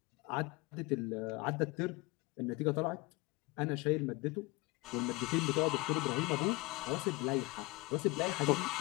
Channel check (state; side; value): quieter; right; 23.7 dB